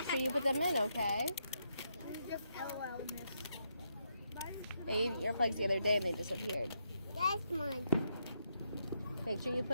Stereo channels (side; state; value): both; inverted; correlation -0.80